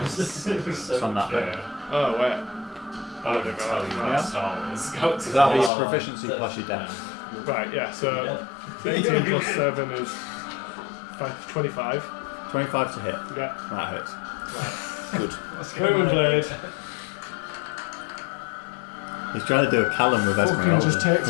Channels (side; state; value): right; drops out; at 5.7 s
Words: It's on that bit. Yeah. Oh wait. I don't tell you Yeah. about Star Wars. So that'll be your proficiency plus your dex. Right, yeah, so 18 plus 7 is 25. 25 to hit. Yeah. That hits. Good. Booming blade. He's trying to do a Callum with Fucking Esmeralda. just takes